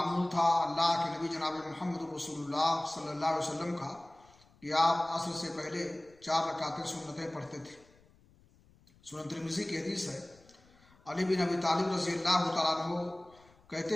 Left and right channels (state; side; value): noise; left; rumble, 29 dB below the sound